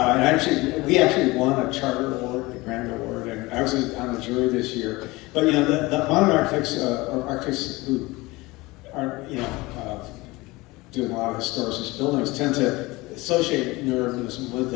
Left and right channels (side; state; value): right; quieter; 21.8 dB